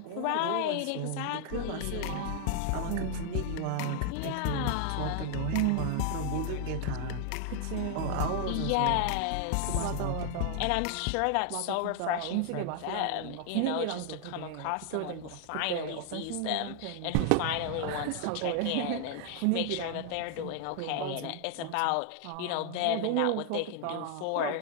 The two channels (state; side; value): different; both; correlation 0.00